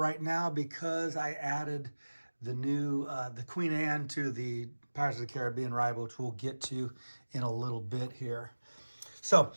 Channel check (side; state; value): both; inverted; correlation -1.00